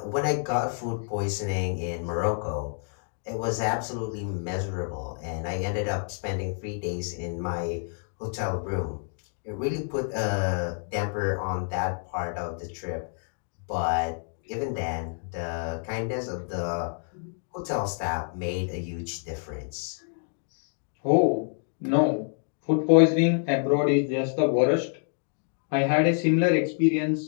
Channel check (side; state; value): right; silent; 59 dB below the other